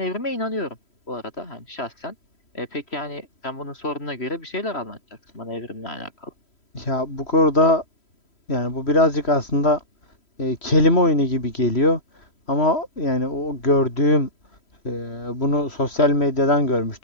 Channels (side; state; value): right; late; 3.1 ms